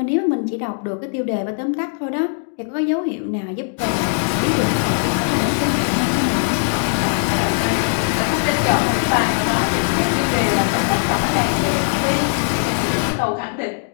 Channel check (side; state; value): right; silent; digital silence